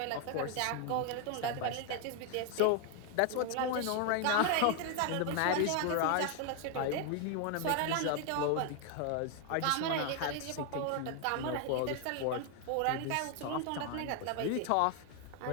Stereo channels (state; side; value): different; both; correlation 0.01